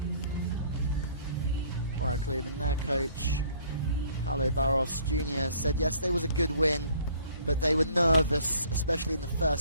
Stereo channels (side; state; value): both; inverted; correlation -0.57